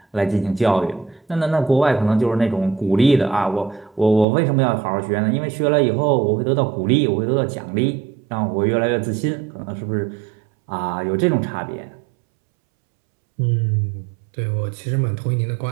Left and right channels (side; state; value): left; drops out; at 4.2 s